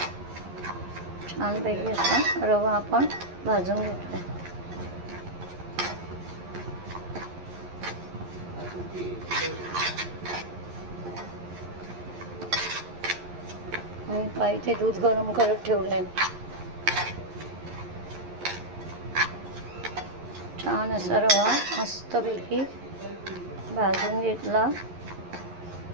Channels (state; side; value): late; left; 11 ms